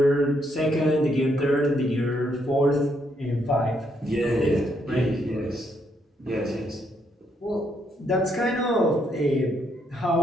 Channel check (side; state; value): both; normal; correlation 0.74